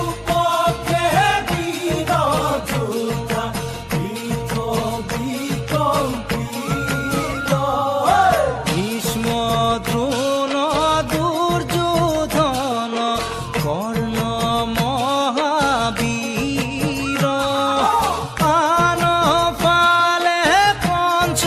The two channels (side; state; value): both; identical; correlation 1.00